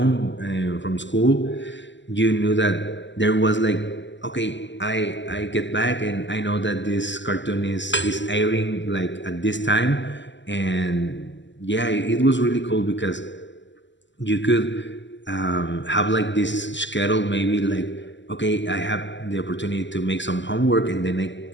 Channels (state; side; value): late; right; 0.54 ms